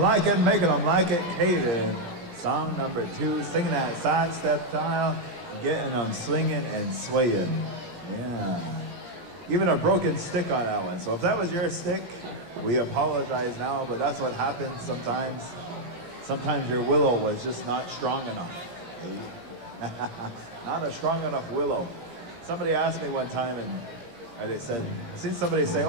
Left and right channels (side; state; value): left; late; 17 ms